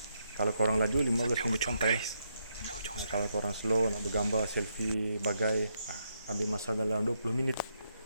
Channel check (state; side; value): inverted; both; correlation -0.79